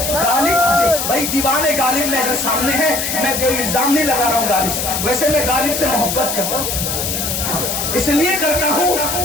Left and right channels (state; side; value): noise; left; hiss, 2 dB below the sound